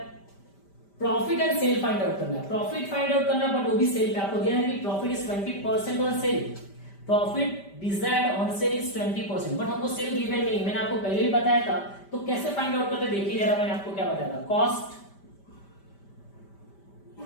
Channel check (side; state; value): right; late; 5.1 ms